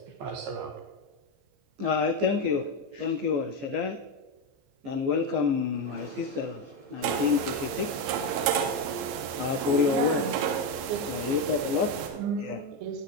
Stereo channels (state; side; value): late; left; 15 ms